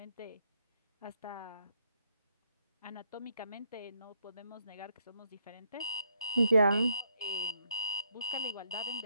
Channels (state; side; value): inverted; both; correlation -0.76